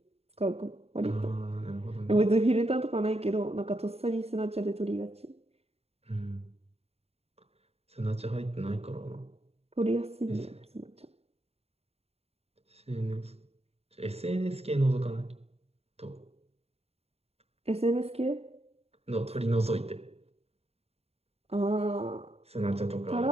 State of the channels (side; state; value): left; late; 0.30 ms